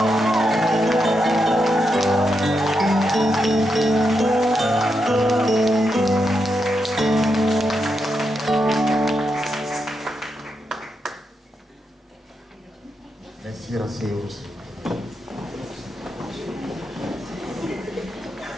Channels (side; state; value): both; normal; correlation 0.84